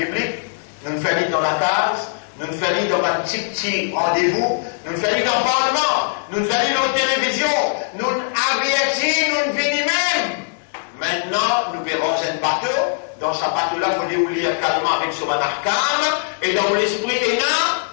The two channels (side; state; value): right; silent; digital silence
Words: nous ne faisons dans la case, nous ne faisons dans un petit rendez-vous, nous ne faisons dans le Parlement, nous ne faisons dans la télévision, nous avertissons, nous venons même. Maintenant, nous verrons un bateau. Dans ce bateau-là, il faut lire calmement avec son arcane, et dans l'esprit est là,